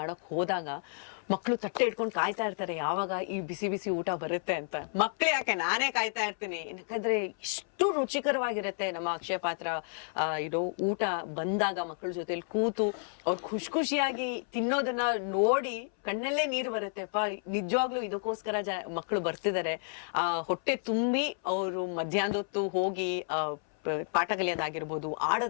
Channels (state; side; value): silent; right; 57 dB below the other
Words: ಹೋದಾಗ ಮಕ್ಕಳು ತಟ್ಟೆ ಇಟ್ಕೊಂಡು ಕಾಯ್ತಾ ಇರ್ತಾರೆ ಯಾವಾಗ ಈ ಬಿಸಿ ಬಿಸಿ ಊಟ ಬರುತ್ತೆ ಅಂತ. ಮಕ್ಳು ಯಾಕೆ, ನಾನೇ ಕಾಯ್ತಾ ಇರ್ತೀನಿ. ಯಾಕಂದ್ರೆ ಇಷ್ಟು ರುಚಿಕರವಾಗಿರುತ್ತೆ ನಮ್ಮ ಅಕ್ಷಯ ಪಾತ್ರ ಊಟ ಬಂದಾಗ ಮಕ್ಕಳ ಜೊತೆಲಿ ಕೂತು ಅವ್ರು ಖುಷಿಯಾಗಿ ತಿನ್ನೋದನ್ನ ನೋಡಿ ಕಣ್ಣಲ್ಲೇ ನೀರು ಬರುತ್ತೆಪ್ಪ. ನಿಜವಾಗ್ಲೂ ಇದಕ್ಕೋಸ್ಕರ ಮಕ್ಕಳು ಬರ್ತಿದ್ದಾರೆ. ಹೊಟ್ಟೆ ತುಂಬಿ ಅವರು ಮಧ್ಯಾಹ್ನದೊತ್ತು ಹೋಗಿ ಪಾಠ ಕಲಿಯೋದಾಗಿರ್ಬೋದು,